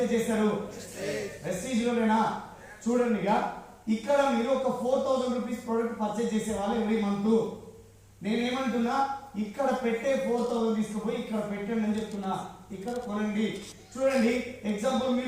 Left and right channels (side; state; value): both; identical; correlation 1.00